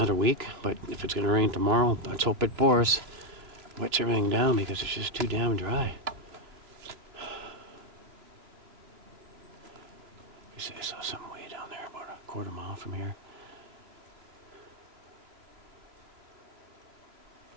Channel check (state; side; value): late; left; 3.0 ms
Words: week, but if it's going to rain tomorrow, let's hope it pours. Wets everything down because it's just too damn dry. You say I saw something way down there, about a quarter mile from here.